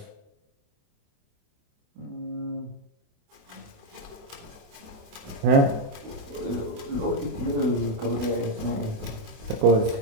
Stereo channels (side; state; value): left; late; 28 ms